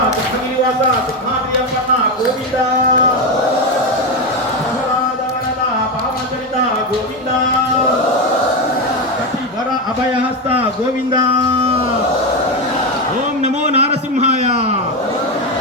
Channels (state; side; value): normal; both; correlation 0.12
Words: గోవింద పావనచరిత గోవింద కటివర అభయహస్త గోవింద. ఓం నమో నారసింహాయ.